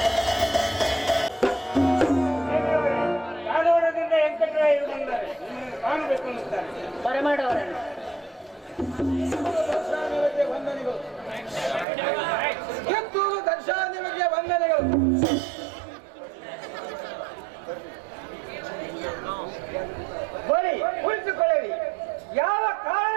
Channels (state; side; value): drops out; left; at 11.9 s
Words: ಬರಮಾಡವರನ್ನು ಕಿತ್ತೂರು ದರ್ಶನ ನಿಮಗೆ ವಂದನೆಗಳು. ಬರೀ ಕುಳಿತುಕೊಳ್ಳಿ, ಯಾವ